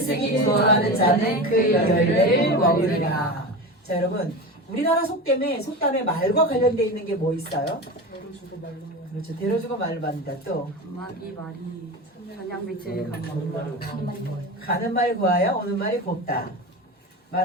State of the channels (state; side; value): normal; both; correlation 0.26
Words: 좋아하는 자는 그 열매를 먹으리라. 자, 여러분, 우리나라 속담에 말과 관련되어 있는 게 뭐 있어요? 대로주고 말로. 그렇죠. 대로주고 말로 받는다. 또 이 말이 한양빛을 감는 가는 말이 고와야 오는 말이 곱다.